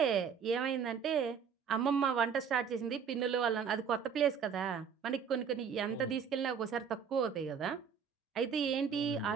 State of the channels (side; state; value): left; quieter; 6.9 dB